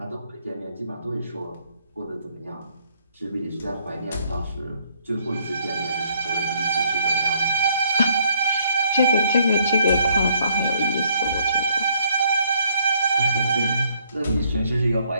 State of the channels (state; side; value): inverted; both; correlation -0.68